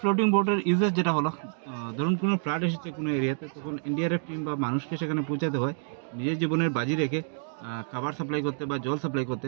বোটের ইউজেস যেটা হলো, ধরুন কোনো ফ্লাড এসেছে কোনো এরিয়াতে, তখন এনডিআরএফ টিম বা মানুষকে সেখানে পৌঁছাতে হয় নিজের জীবনের বাজি রেখে খাবার সাপ্লাই করতে বা জল সাপ্লাই করতে।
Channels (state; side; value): silent; left; digital silence